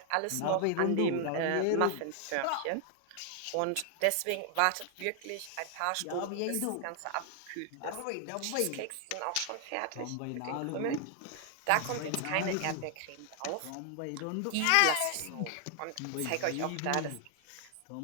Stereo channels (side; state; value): both; different; correlation 0.00